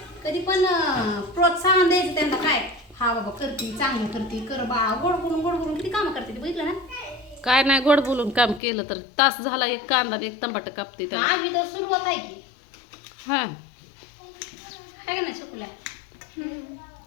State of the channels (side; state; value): right; drops out; at 8.6 s